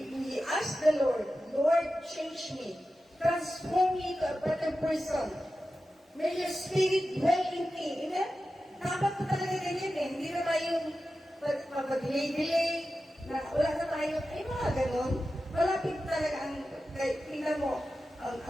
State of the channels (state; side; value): normal; both; correlation 0.93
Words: ask the Lord, Lord, change me. Transform me to a better person. May your spirit dwell in me. Amen? Dapat po talaga ganyan eh. Hindi na tayong pag-delay, na wala na tayo, ay mga ganon. Malapit talaga ang, tingnan mo, ang